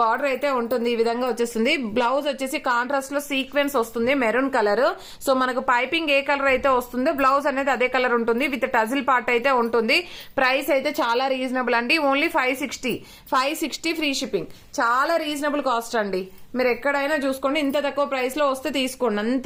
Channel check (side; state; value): both; identical; correlation 1.00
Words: అయితే ఉంటుంది. ఈ విధంగా వచ్చేస్తుంది. బ్లౌజ్ వచ్చేసి కాంట్రాస్ట్ లో సీక్వెన్స్ వస్తుంది, మెరూన్ కలర్. సో మనకు పైపింగ్ ఏ కలర్ అయితే వస్తుందో బ్లౌజ్ అనేది అదే కలర్ ఉంటుంది, విత్ టజిల్ పార్ట్ అయితే ఉంటుంది. ప్రైస్ అయితే చాలా రీజనబుల్ అండి, ఓన్లీ 560 ఫ్రీ షిప్పింగ్. చాలా రీజనబుల్ కాస్ట్ అండి. మీరు ఎక్కడైనా చూసుకోండి, ఇంత తక్కువ ప్రైస్ లో వస్తే తీసుకోండి.